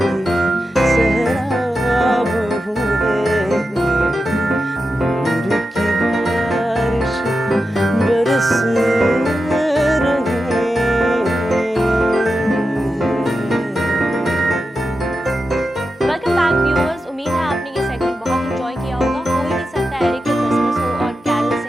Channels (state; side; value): normal; both; correlation 0.89